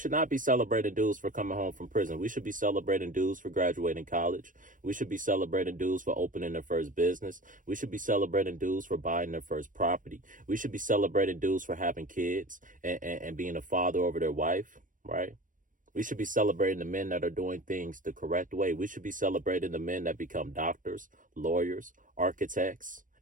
not be celebrating dudes for coming home from prison. We should be celebrating dudes for graduating college. We should be celebrating dudes for opening their first business. We should be celebrating dudes for buying their first property. We should be celebrating dudes for having kids and being a father over their wife, right? We should be celebrating the men that are doing things the correct way. We should be celebrating the men that become doctors, lawyers, architects,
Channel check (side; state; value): left; late; 0.38 ms